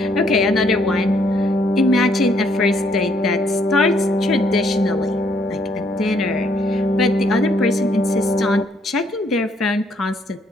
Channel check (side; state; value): both; normal; correlation 0.69